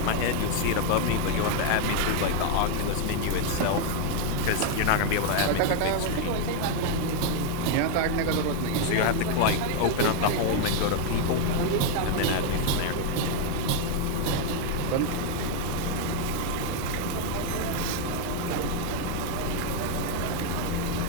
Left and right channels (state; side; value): different; both; correlation 0.01